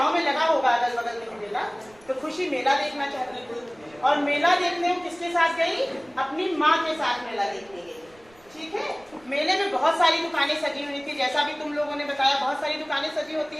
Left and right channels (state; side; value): noise; right; rumble, 28 dB below the sound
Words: में लगा होगा अगल बगल में मेला, तो खुशी मेला देखना चाहती थी और मेला देखने वो किसके साथ गई, अपनी माँ के साथ मेला देखने गई। ठीक है, मेले में बहुत सारी दुकानें सजी हुई थी, जैसा भी तुम लोगों ने बताया बहुत सारी दुकानें सजी होती